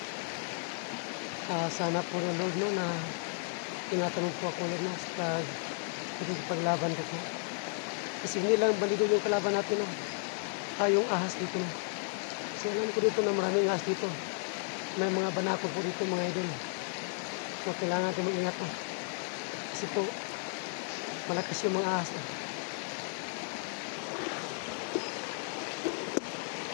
Sana po ng Lord, no, na tinatanong po ako ulit, no, sa paglaban ko. Kasi hindi lang balido yung kalaban natin, no? Yung ahas dito, no? Kasi alam ko dito na maraming ahas dito. May mga banako po dito, mga idol. So kailangan natin mag-ingat, no? Kasi po malakas yung mga ahas, no?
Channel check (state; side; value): silent; right; 55 dB below the other